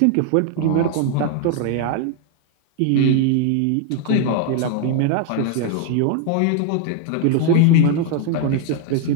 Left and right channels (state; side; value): different; both; correlation 0.00